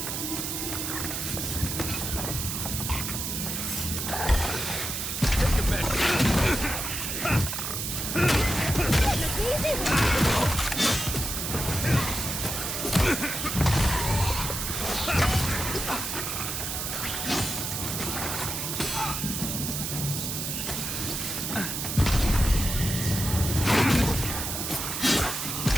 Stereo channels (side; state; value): right; noise; hiss, 3 dB below the sound